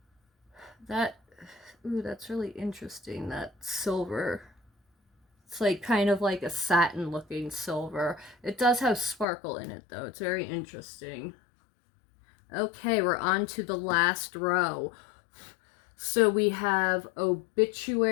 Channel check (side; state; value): right; drops out; at 9.2 s